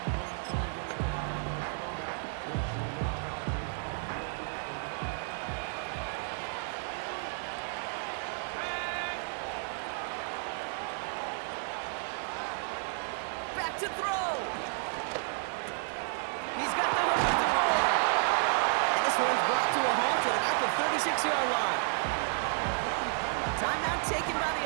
Set to throw. He's got the hook up the board. And this one's brought to a halt at about the 36-yard line. Timeout taken by the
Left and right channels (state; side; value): silent; left; 57 dB below the other